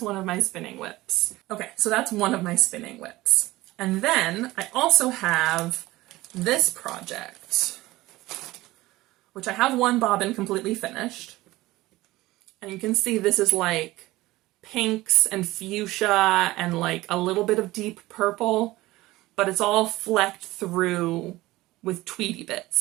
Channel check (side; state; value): left; quieter; 18.4 dB